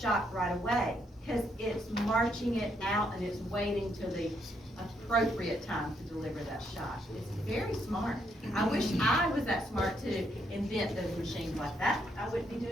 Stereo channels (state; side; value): normal; both; correlation 0.75